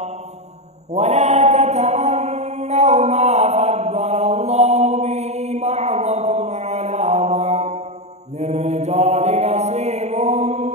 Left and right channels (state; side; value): late; left; 0.32 ms